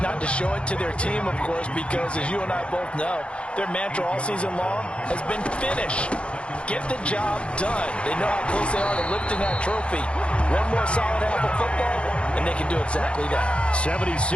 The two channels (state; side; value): late; right; 0.058 ms